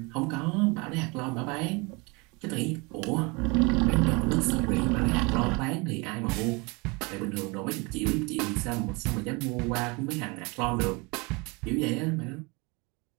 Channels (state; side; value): quieter; left; 27.8 dB